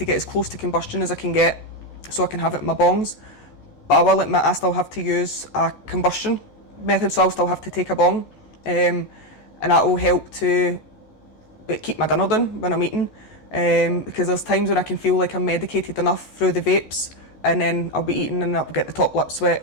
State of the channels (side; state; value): right; late; 14 ms